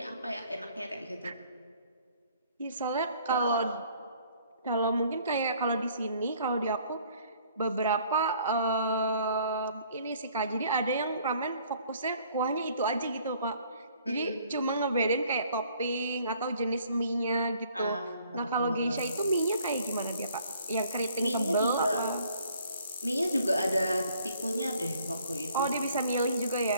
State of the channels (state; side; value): inverted; both; correlation -0.60